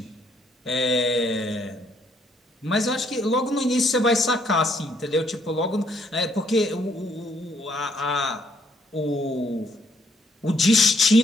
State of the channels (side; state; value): both; normal; correlation 0.70